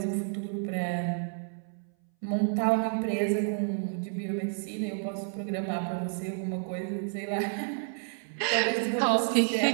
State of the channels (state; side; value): silent; left; 58 dB below the other